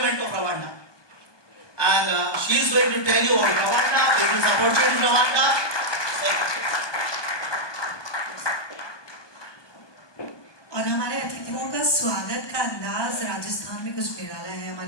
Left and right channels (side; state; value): right; late; 1.2 ms